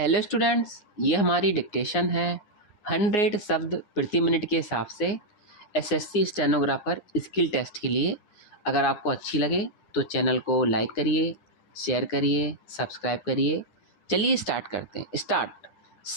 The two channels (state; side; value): late; right; 9.7 ms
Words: students, ये हमारी dictation है 100 शब्द प्रति मिनट के हिसाब से एसएससी स्टेनोग्राफर स्किल टेस्ट के लिए। अगर आपको अच्छी लगे तो चैनल को लाइक करिए, शेयर करिए, सब्सक्राइब करिए। चलिए स्टार्ट करते हैं। स्टार्ट।